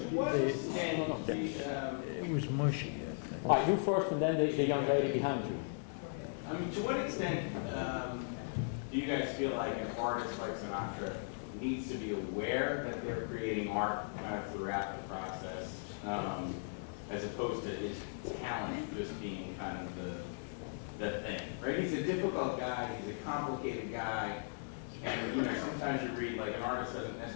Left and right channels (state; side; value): silent; right; 53 dB below the other